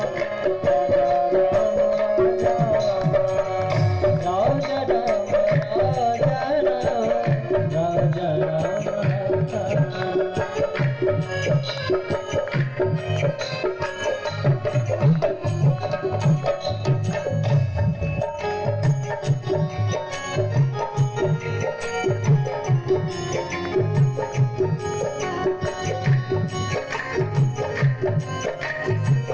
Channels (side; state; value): both; identical; correlation 1.00